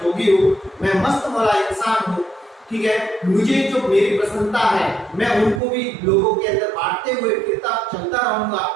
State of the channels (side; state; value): left; drops out; at 5.6 s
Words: हूँ, मैं मस्त मौला इंसान हूँ। ठीक है, मुझे जो मेरी प्रसन्नता है मैं उनको भी लोगों के अंदर बांटते हुए फिरता चलता रहूंगा,